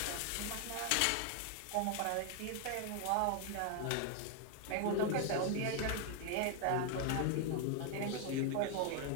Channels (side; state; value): both; different; correlation 0.00